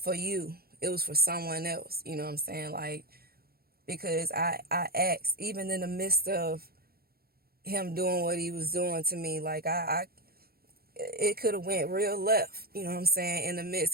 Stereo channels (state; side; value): late; left; 0.44 ms